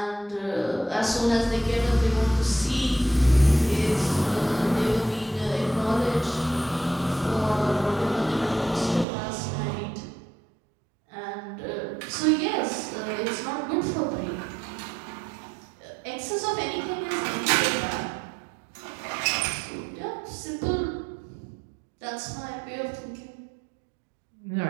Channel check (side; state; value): left; drops out; at 9.1 s